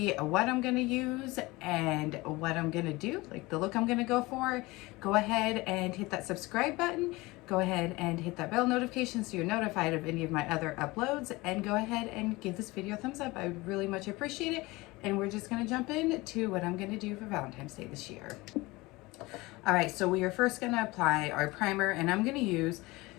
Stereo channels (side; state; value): right; quieter; 21.8 dB